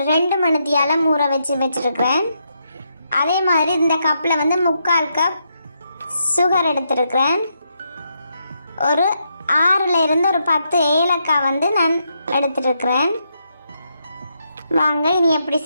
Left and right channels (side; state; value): both; inverted; correlation -0.80